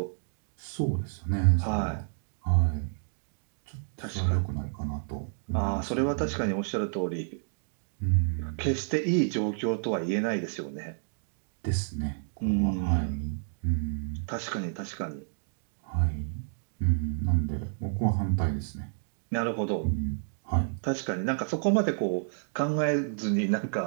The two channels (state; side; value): silent; left; digital silence